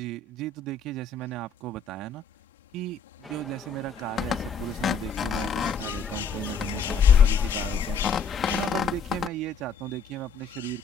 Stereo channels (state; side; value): quieter; right; 4.9 dB